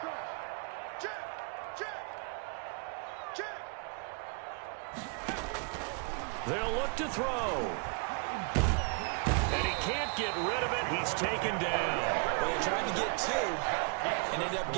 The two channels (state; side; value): quieter; left; 37.8 dB